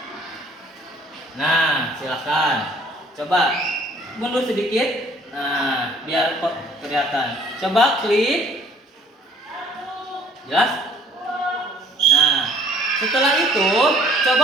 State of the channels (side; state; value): both; normal; correlation 0.57